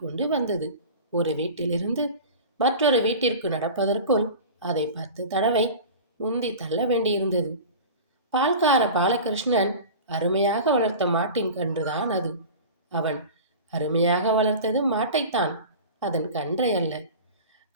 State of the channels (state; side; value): inverted; both; correlation -0.34